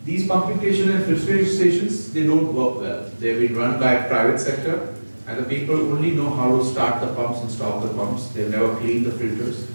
these pumping stations and filtration stations, they don't work well. They've been run by a private sector, and the people only know how to start the pumps and stop the pumps. They've never cleaned the filters.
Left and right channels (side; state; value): both; inverted; correlation -1.00